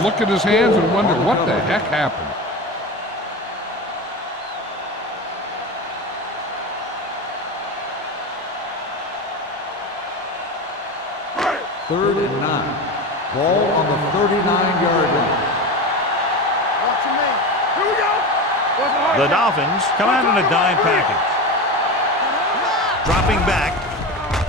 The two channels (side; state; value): both; normal; correlation 0.25